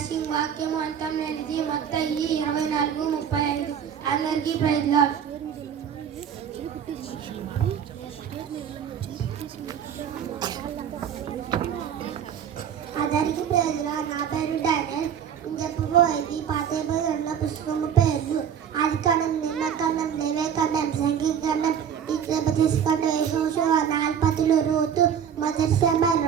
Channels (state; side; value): quieter; left; 8.3 dB